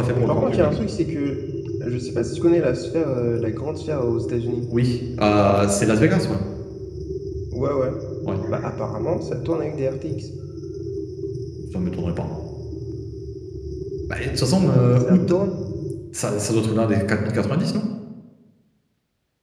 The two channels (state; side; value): identical; both; correlation 1.00